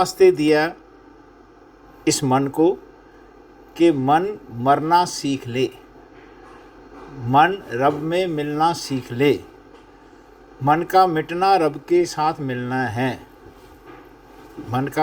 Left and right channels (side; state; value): both; identical; correlation 1.00